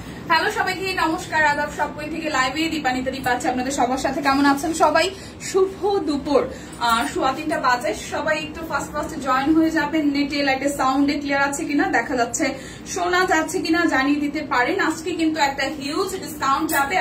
Hello সবাইকে নমস্কার, আদাব। সবকই থেকে লাইভে দীপানিতা দীপা আছে আপনাদের সবার সাথে। কেমন আছেন সবাই? শুভ দুপুর, 3:15 বাজে। সবাই একটু ফার্স্ট জয়েন হয়ে যাবেন। নেটে লাইটে সাউন্ডে ক্লিয়ার আছে কিনা, দেখা যাচ্ছে, শোনা যাচ্ছে কিনা জানিয়ে দিতে পারেন। আজকে কিন্তু একটা হিউজ ডিসকাউন্ট যাবে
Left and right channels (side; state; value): both; identical; correlation 1.00